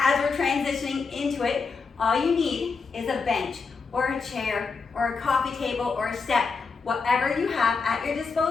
we're transitioning into it. All you need is a bench or a chair or a coffee table or a step, whatever you have at your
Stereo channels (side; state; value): right; quieter; 4.8 dB